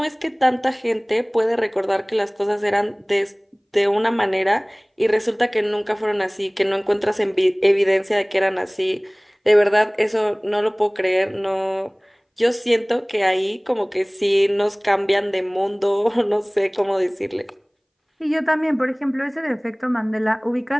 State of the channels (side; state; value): both; identical; correlation 1.00